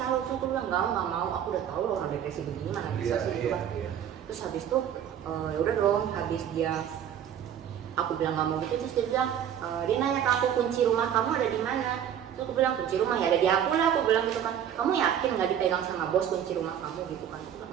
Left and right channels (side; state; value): left; quieter; 9.4 dB